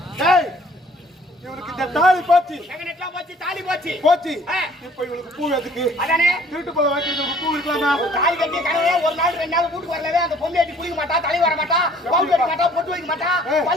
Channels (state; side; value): normal; both; correlation 0.56